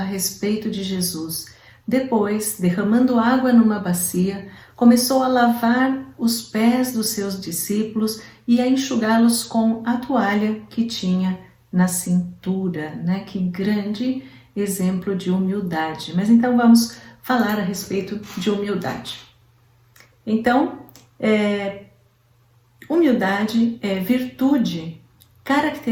respeito de Jesus. Depois, derramando água numa bacia, começou a lavar os pés dos seus discípulos e a enxugá-los com a toalha que tinha na cintura, né? Que grande exemplo de humildade. Mas então vamos falar a respeito de humildade. Então, humildade é virtude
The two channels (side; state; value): both; identical; correlation 1.00